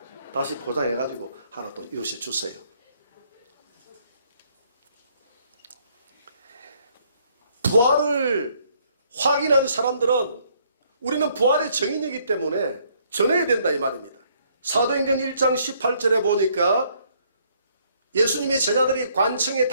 다시 포장해가지고 하나 또 이웃에 주세요. 부활을 확인한 사람들은 우리는 부활의 정인이기 때문에 전해야 된다 이 말입니다. 사도행전 1장 18절에 보니까 예수님의 제자들이 관청에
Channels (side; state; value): both; inverted; correlation -0.67